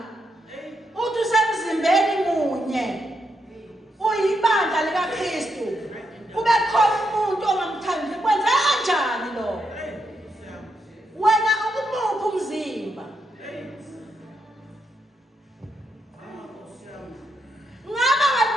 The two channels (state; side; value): normal; both; correlation 0.81